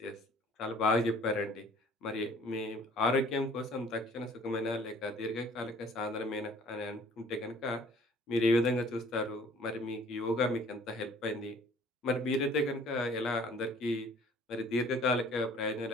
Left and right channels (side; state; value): both; normal; correlation 0.54